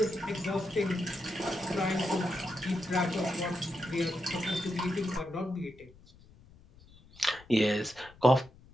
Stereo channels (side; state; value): left; noise; rumble, 24 dB below the sound